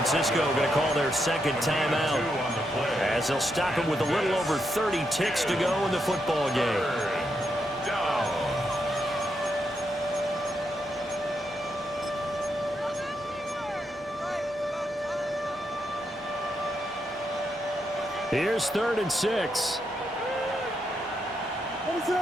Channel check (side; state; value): both; normal; correlation 0.81